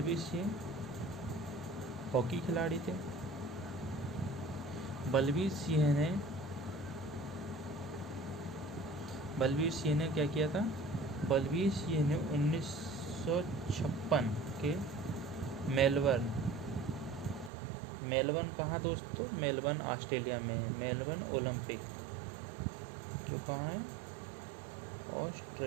सिंह हॉकी खिलाड़ी थे। बलवीर सिंह ने क्या किया था? बलवीर सिंह ने 1956 के मेलबर्न कहाँ दोस्तों? मेलबर्न ऑस्ट्रेलिया में, मेलबर्न ओलंपिक जो कहाँ है?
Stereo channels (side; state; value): left; drops out; at 17.5 s